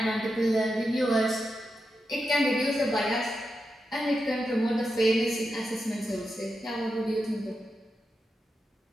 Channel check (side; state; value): both; normal; correlation 0.88